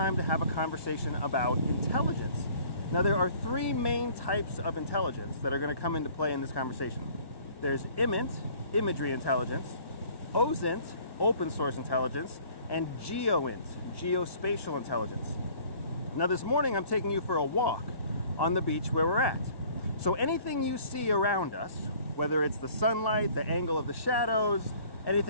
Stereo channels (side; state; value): right; late; 1.6 ms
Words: to have a conversation about intelligence. Now, there are three main types of intelligence that are going to come into play in this conversation. There's IMINT, imagery intelligence, OSINT, open source intelligence, and GEOINT, geospatial intelligence. Now, this morning I'm taking you for a walk on the beach where we're at. So anything you see around us, whether it's the sunlight, the angle of the shadows,